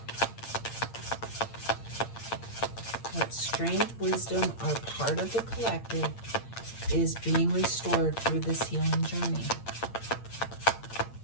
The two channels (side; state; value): right; late; 8.7 ms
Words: What strength, wisdom, or part of the collective is being restored through this healing journey?